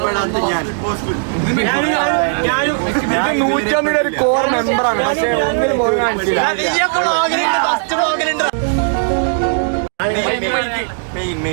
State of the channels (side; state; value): left; silent; digital silence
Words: പെടാത്ത ഞാൻ 150 ഒരു കോർ മെമ്പറാണ്. പക്ഷേ ഒന്നിനും പോയി കാണിച്ചില്ല.